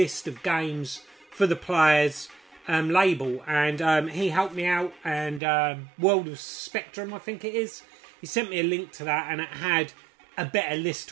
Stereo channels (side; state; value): left; drops out; at 5.4 s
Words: of games for the Players label, and he helped me out, and World of Spectrum, I think it is, he sent me a link to that, and it had a better list